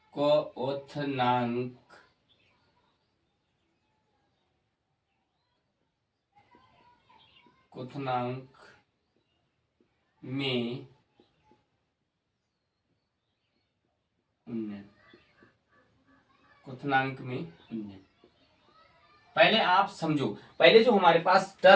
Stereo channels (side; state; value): both; identical; correlation 1.00